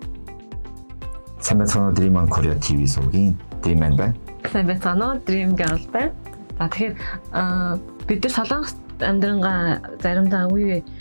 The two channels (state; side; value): inverted; both; correlation -1.00